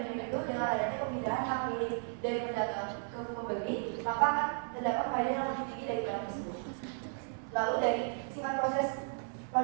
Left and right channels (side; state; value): left; silent; 55 dB below the other